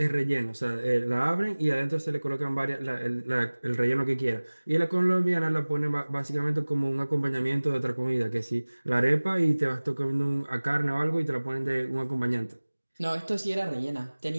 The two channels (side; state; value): both; inverted; correlation -1.00